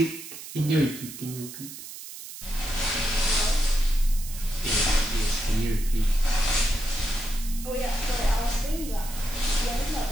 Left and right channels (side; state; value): right; noise; hiss, 12 dB below the sound